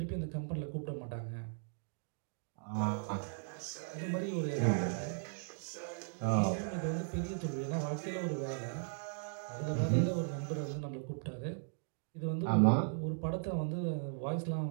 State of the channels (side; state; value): left; silent; digital silence